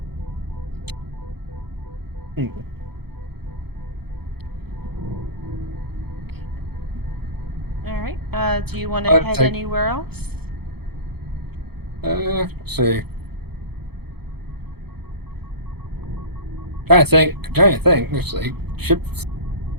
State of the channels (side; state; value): left; late; 0.96 ms